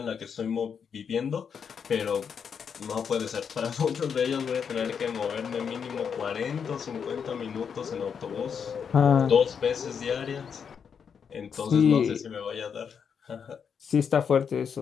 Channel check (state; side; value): quieter; right; 6.9 dB